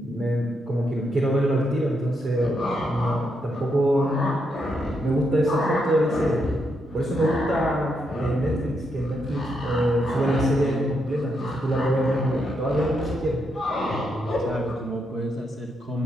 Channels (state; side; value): normal; both; correlation 0.80